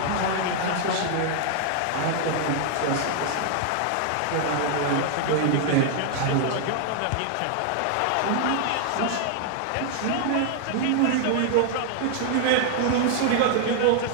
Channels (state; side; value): different; both; correlation 0.00